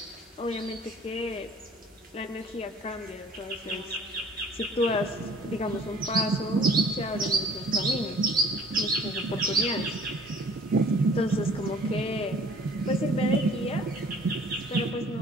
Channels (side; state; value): both; normal; correlation 0.53